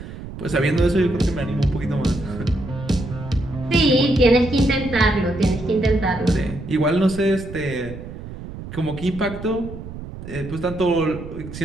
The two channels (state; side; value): noise; right; rumble, 11 dB below the sound